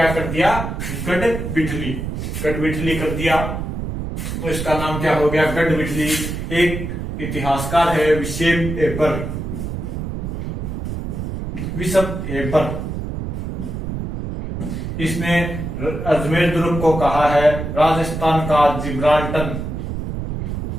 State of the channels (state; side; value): noise; right; rumble, 5 dB below the sound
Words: कर दिया? गढ़विठली, गढ़विठली कर दिया। तो इसका नाम क्या हो गया? गढ़विठली। एक इतिहासकार है विशेप एपर, इसने अजमेर दुर्ग को कहा है राजस्थान का जिब्राल्टर,